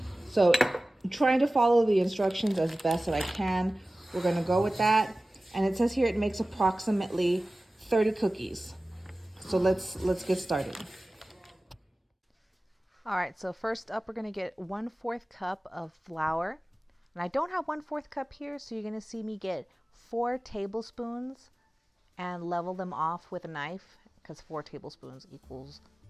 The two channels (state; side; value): normal; both; correlation 0.97